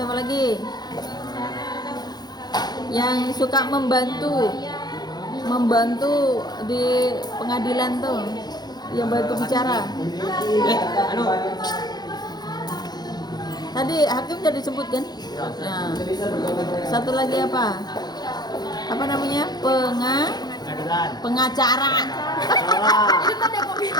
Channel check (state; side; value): late; right; 0.20 ms